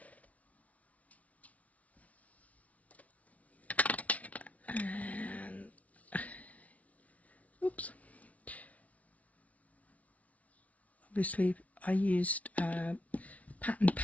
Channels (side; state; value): right; late; 0.068 ms